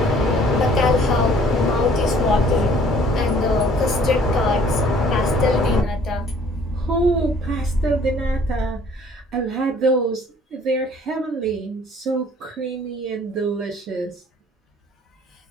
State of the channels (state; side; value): normal; both; correlation 0.56